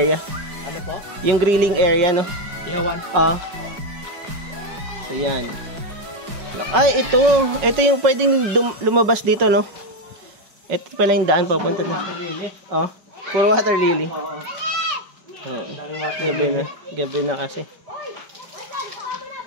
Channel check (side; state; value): left; late; 5.4 ms